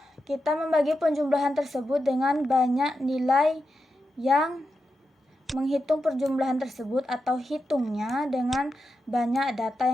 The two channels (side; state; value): both; normal; correlation 0.88